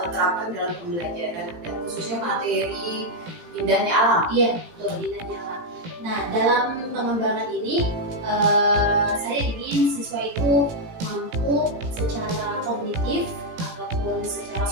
terapkan dalam pembelajaran dan khususnya materi indahnya alam? Iya betul, indahnya alam. Nah dalam pengembangan ini saya ingin siswa itu mampu secara kognitif ataupun secara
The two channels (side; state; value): left; late; 18 ms